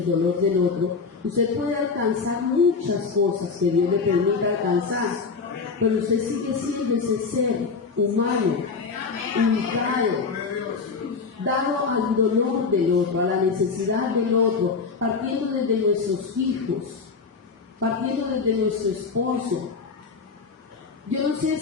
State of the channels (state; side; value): quieter; right; 4.9 dB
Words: dolor del otro, usted puede alcanzar muchas cosas que Dios le permita alcanzar, pero usted sigue siendo ese ser humano, ubicado, dado al dolor del otro, a la necesidad del otro, partiendo desde nuestros hijos, partiendo desde nuestro esposo. Yo no sé